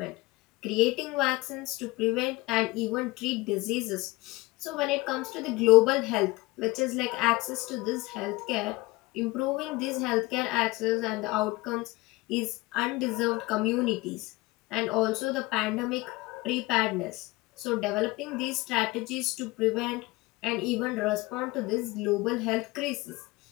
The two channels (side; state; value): right; quieter; 21.9 dB